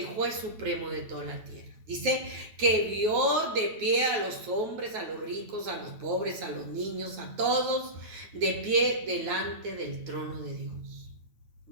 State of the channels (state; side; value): late; left; 9.1 ms